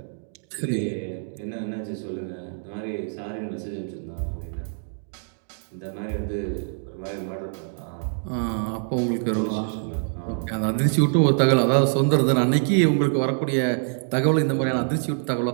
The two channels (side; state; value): left; silent; digital silence